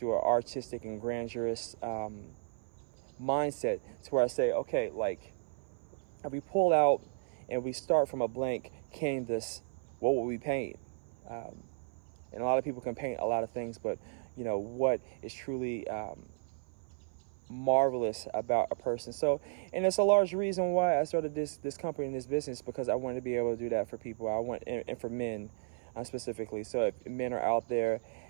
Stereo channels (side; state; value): left; silent; 55 dB below the other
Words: an artistic and grandiose mindset, to where I say, okay, like if we pull out and we start from a blank canvas, what will we paint? And a lot of people can paint a lot of things, but what is truly marvelous about a person. So, and it's a large reason why I started this company and this business, because I wanted to be able to do that for people. I want, and for men specifically. So if men are out there,